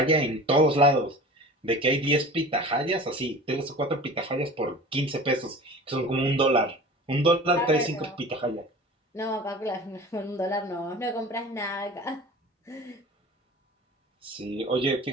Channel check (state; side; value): normal; both; correlation 0.38